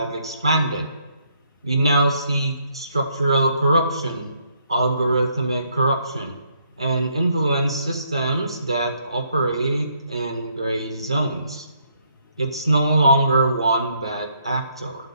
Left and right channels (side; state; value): both; inverted; correlation -0.71